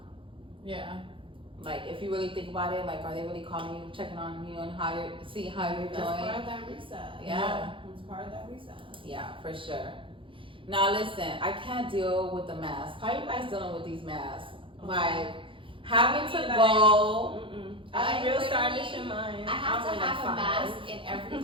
Yeah. Like, if you really think about it, like, are they really calling you, checking on you, and how you're doing? That's part of that reset. Yeah. It's part of that reset. Yeah, for sure. Now listen, I can't deal with the mask. How you guys dealing with these masks? Like, having to go. I'm real stylish in mine. I have to have a mask in every,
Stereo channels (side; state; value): left; late; 0.25 ms